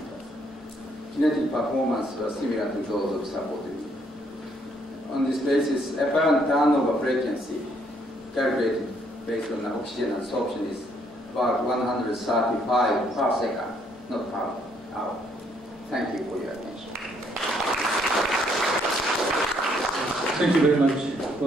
Kinetic performance was similar to those of supported nickel. On this basis, apparent turnover frequency calculated based on the oxygen absorption is about 135 per second, not per hour. Thank you for your attention. Thank you very much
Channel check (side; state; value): both; normal; correlation 0.69